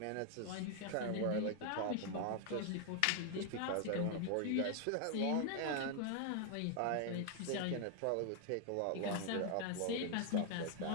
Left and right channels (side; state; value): both; different; correlation 0.00